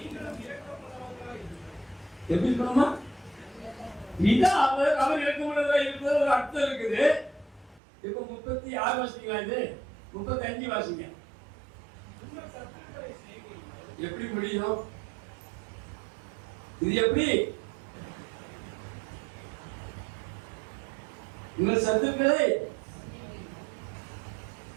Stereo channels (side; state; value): left; drops out; at 7.8 s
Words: எப்படி இருக்கணுமா? பிதா அவர் இரக்கமுள்ளவரா இருக்கிறது ஒரு அர்த்தம் இருக்குது. இப்ப 36 வாசிங்களா, இது 35 வாசிங்க. எப்படி முடியும் இது? எப்படி உங்கள் சத்துக்களை